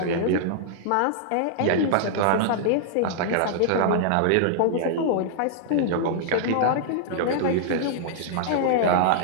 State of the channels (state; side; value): different; both; correlation -0.01